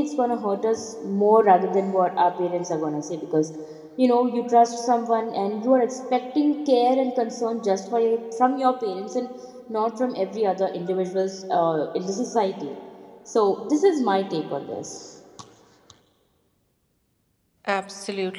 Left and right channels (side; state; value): both; identical; correlation 1.00